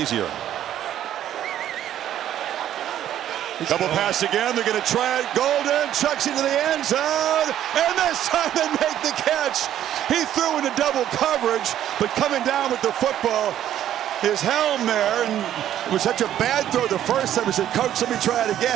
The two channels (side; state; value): left; quieter; 11.4 dB